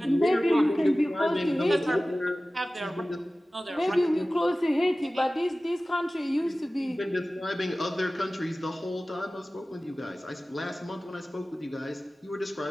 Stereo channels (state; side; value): normal; both; correlation 0.97